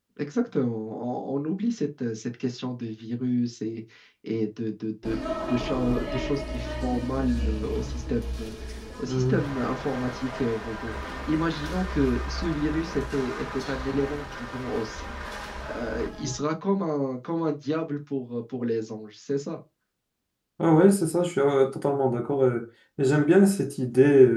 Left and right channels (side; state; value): both; identical; correlation 1.00